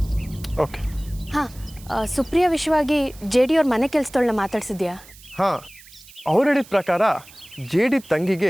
ಓಕೆ. ಹಾಂ, ಸುಪ್ರಿಯಾ ವಿಷಯವಾಗಿ ಜೆ ಡಿ ಅವ್ರ ಮನೆ ಕೆಲಸದೊಳನ್ನ ಮಾತಾಡ್ಸಿದ್ಯಾ? ಹಾಂ, ಅವ್ರು ಹೇಳಿದ ಪ್ರಕಾರ ಜೆ ಡಿ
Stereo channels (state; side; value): noise; right; hiss, 22 dB below the sound